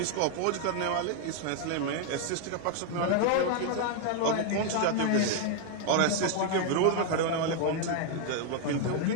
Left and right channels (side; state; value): both; different; correlation 0.00